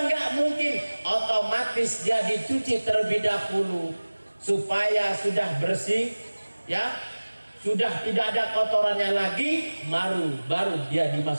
nggak mungkin. Otomatis dia dicuci terlebih dahulu supaya sudah bersih, ya, sudah tidak ada kotorannya lagi, baru dia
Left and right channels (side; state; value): both; inverted; correlation -1.00